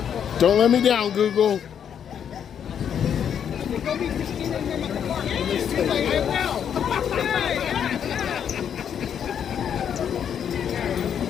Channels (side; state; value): right; quieter; 8.5 dB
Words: Don't let me down, Google.